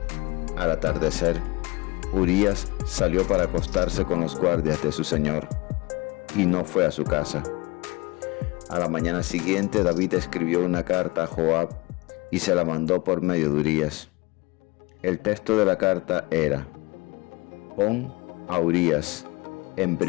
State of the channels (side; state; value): right; quieter; 23.2 dB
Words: Al atardecer, Urías salió para acostarse con los guardias de su señor y no fue a su casa. A la mañana siguiente, David escribió una carta a Joab y se la mandó por medio de Urías. El texto de la carta era: pon a Urías en